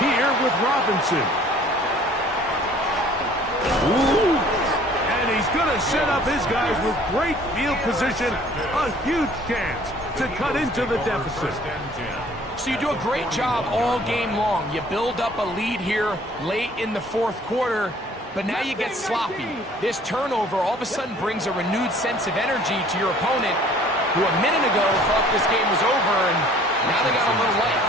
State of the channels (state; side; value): normal; both; correlation 0.54